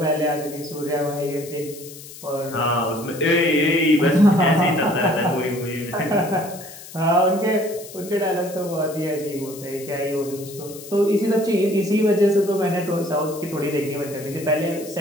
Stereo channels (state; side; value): noise; left; hiss, 16 dB below the sound